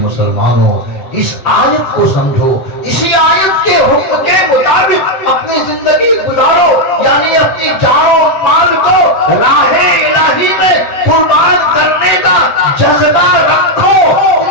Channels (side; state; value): right; late; 7.7 ms